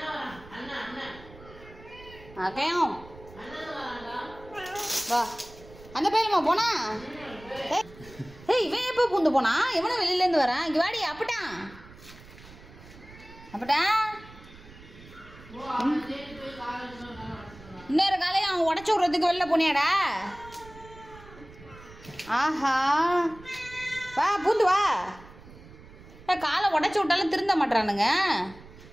அக்கையும் வா. அந்த பையலமா போனா? ஏய் இவன் எப்போ பூந்து போனா? எவனும் வெளியிலேருந்து வரான். இங்கே வாடி. அப்பட்டான் இன்னொரு காலையும் அவன் உடச்சி விட்றதுக்கு வெளில போனியாடா? ஆஹா வா பூந்து வா. காலை உடச்சி விட்டாலும் திருந்த மாட்டானுங்க.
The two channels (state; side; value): noise; right; rumble, 20 dB below the sound